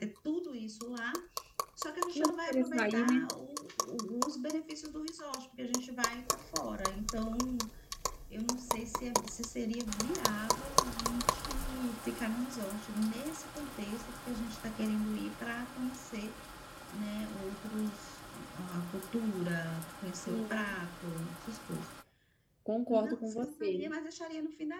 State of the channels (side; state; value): both; identical; correlation 1.00